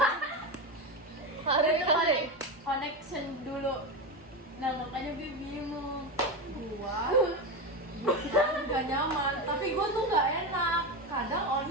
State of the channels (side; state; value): both; normal; correlation 0.17